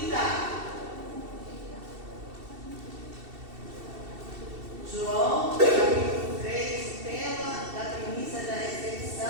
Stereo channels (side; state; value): left; late; 2.7 ms